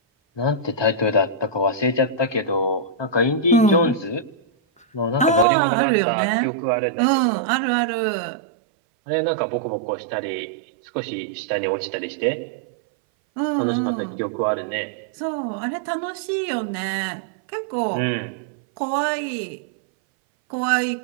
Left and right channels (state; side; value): drops out; left; at 5.5 s